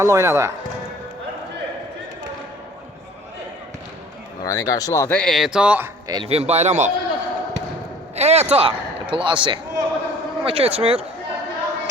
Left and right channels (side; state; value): both; normal; correlation 0.50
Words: oynadı. Nurani qarşıladı. Eto. Elvin Bayramov. Eto. Plasi. Amma keçmir.